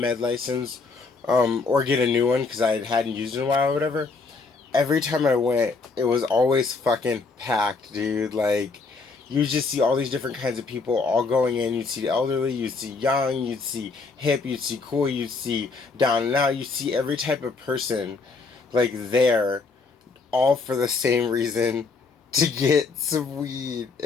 license, or get a new one because I hadn't used it in a while or whatever. Every time I went, it was always fucking packed, dude. Like, you just see all these different kinds of people all going in. You'd see the elderly, you'd see young, you'd see hip, you'd see cool, you'd see down and out. You see every type of person like there, all for the same reason, to get some weed.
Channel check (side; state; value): right; quieter; 4.3 dB